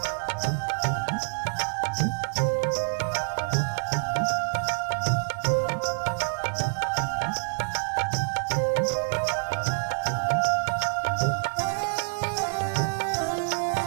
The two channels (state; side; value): silent; left; digital silence